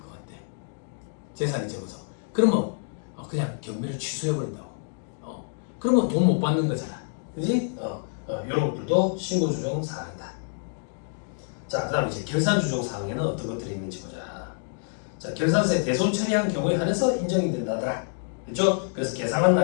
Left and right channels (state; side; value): silent; right; digital silence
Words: 같아. 재산이 적어서. 그러면 그냥 경매를 취소해버린다고. 그러면 돈 못 받는 거잖아. 그지? 이런 것들도 신고 조정 사항이다. 자, 그 다음 이제 결산 조정 사항에는 어떤 것들이 있는지 보자. 자, 결산세 대손 처리한 경우에 한해서 인정이 된다더라. 그렇죠? 그래서 계상한